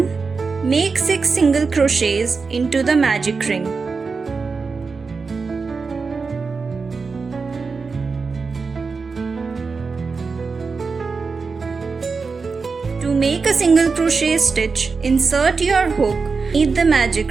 Make 6 single crochets into the magic ring. To make a single crochet stitch, insert your hook beneath the magic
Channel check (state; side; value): quieter; left; 4.7 dB